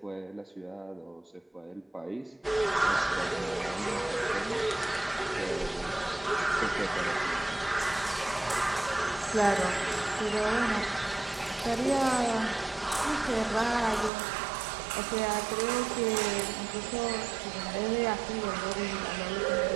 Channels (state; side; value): drops out; left; at 14.1 s